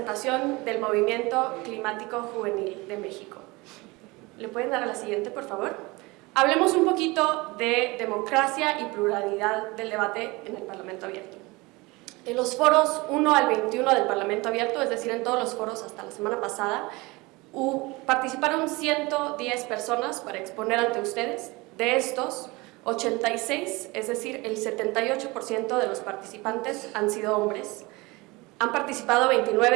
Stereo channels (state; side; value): quieter; left; 23.7 dB